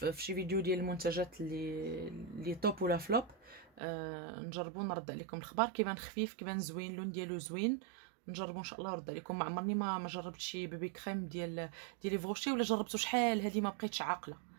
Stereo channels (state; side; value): drops out; left; at 3.8 s